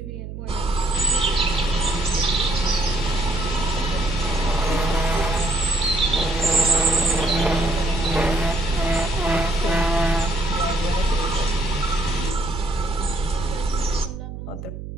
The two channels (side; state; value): right; noise; hum, 9 dB below the sound